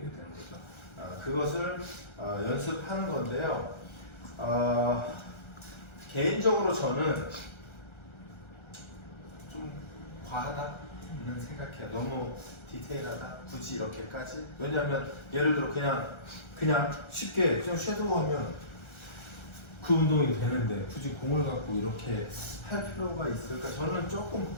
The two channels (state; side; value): late; right; 1.3 ms